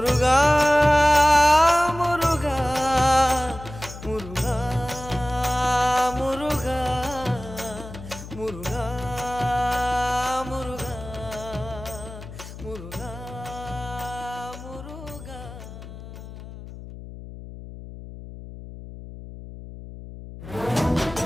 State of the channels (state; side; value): noise; left; hum, 13 dB below the sound